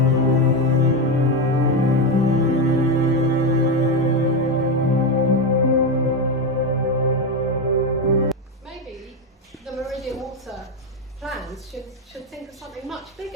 Should think of something much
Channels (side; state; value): both; normal; correlation 0.11